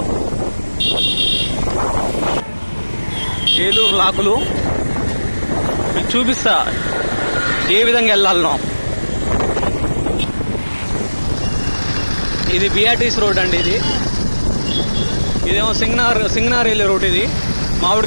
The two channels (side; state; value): both; inverted; correlation -1.00